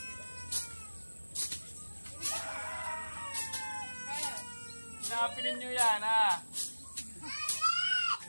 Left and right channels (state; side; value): inverted; both; correlation -1.00